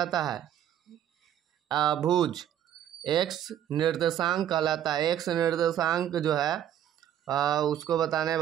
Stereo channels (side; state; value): left; quieter; 10.6 dB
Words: है, भुज। एक्स निर्देशांक कहलाता है, एक्स निर्देशांक जो है उसको बताने